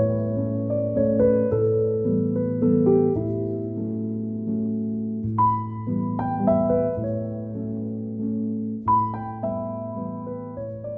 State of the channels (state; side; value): identical; both; correlation 1.00